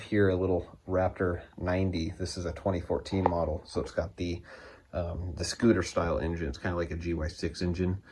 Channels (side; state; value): both; identical; correlation 1.00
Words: a little Raptor 90. This is a 2014 model, so it's got the scooter style engine. It's kind of like a GY6 engine.